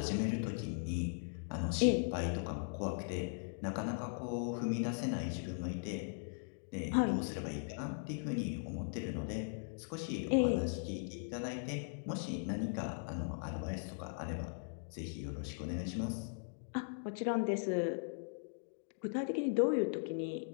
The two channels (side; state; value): right; silent; digital silence